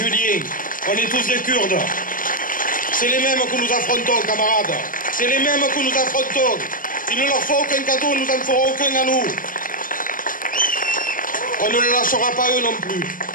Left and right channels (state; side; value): late; right; 0.40 ms